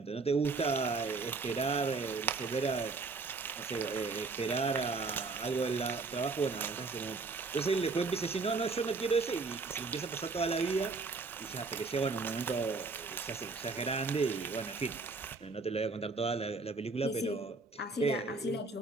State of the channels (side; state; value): left; quieter; 4.0 dB